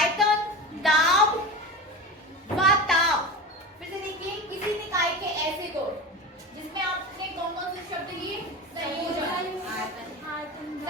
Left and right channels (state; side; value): normal; both; correlation 0.28